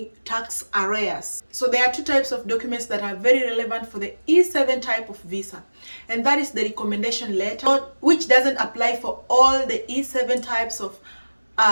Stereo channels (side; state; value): both; inverted; correlation -1.00